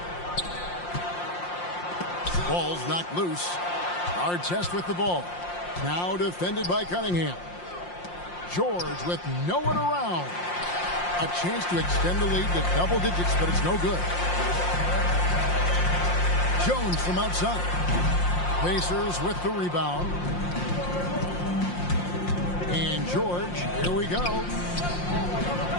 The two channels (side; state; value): right; late; 5.7 ms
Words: Ball's knocked loose. Hard test with the ball. Now defended by Cunningham. George with no one around. A chance to extend the lead to double digits, but it's no good. Jones from outside. Pacers with the rebound. And George, here we go.